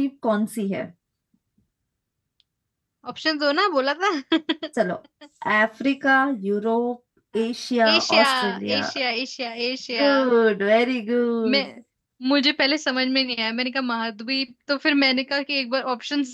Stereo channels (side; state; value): both; identical; correlation 1.00